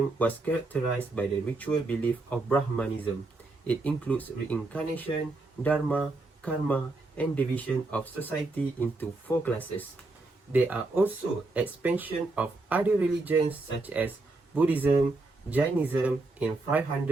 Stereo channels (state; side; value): quieter; left; 3.2 dB